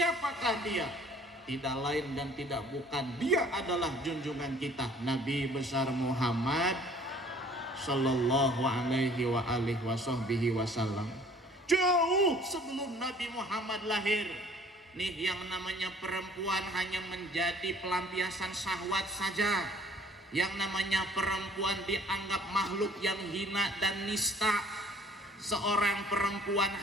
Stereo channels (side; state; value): both; normal; correlation 0.55